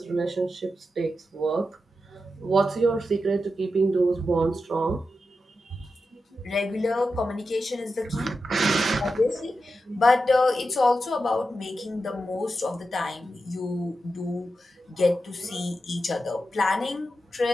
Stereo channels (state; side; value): normal; both; correlation 0.89